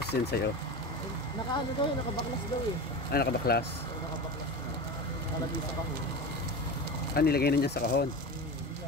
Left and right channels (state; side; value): normal; both; correlation 0.27